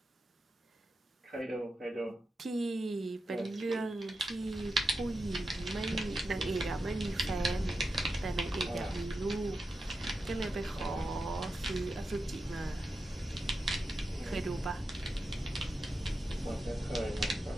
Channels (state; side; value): normal; both; correlation 0.89